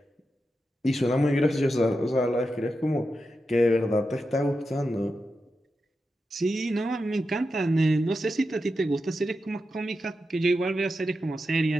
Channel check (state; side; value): normal; both; correlation 0.89